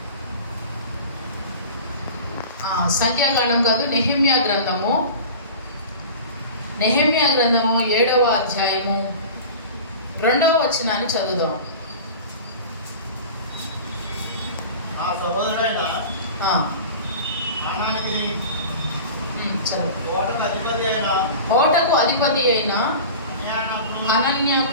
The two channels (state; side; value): inverted; both; correlation -0.36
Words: కాదు, నెహెమ్యా గ్రంథము 7వ అధ్యాయము 2వ వచనాన్ని చదువుదాం. ఓటకు అధిపతి అయిన